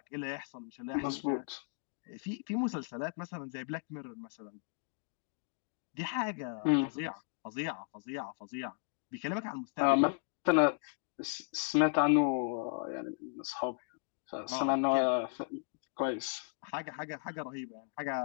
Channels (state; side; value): silent; right; 54 dB below the other